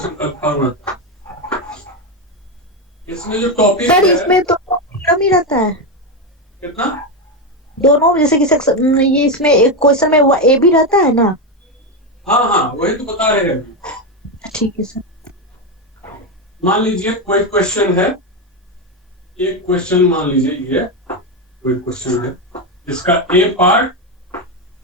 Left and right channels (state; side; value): normal; both; correlation 0.10